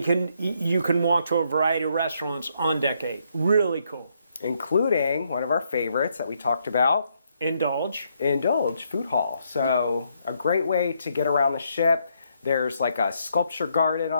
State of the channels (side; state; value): both; inverted; correlation -0.74